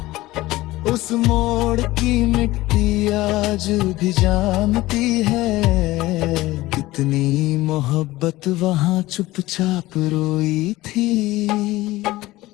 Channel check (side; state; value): right; quieter; 18.2 dB